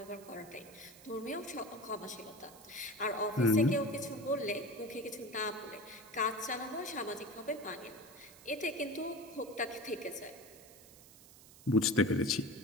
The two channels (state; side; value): noise; right; hiss, 20 dB below the sound